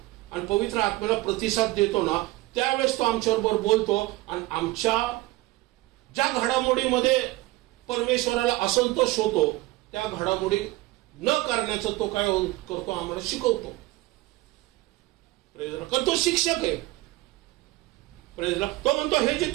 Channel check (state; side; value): quieter; left; 19.2 dB